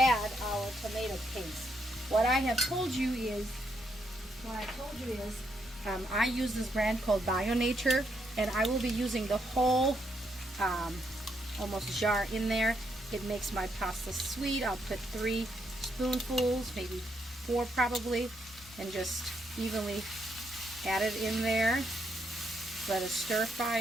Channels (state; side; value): normal; both; correlation 0.77